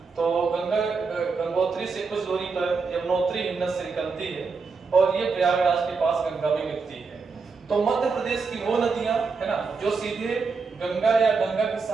तो गंगा गंगोत्री से कुछ दूरी पर यमुनोत्री हिमनद से निकलती है और ये प्रयागराज के पास गंगा में मिलती है। तो मध्य प्रदेश की वो नदियां, है ना, जो सीधे गंगा या गंगा की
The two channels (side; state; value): left; quieter; 4.8 dB